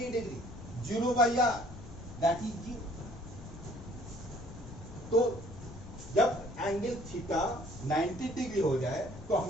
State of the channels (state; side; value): noise; left; rumble, 14 dB below the sound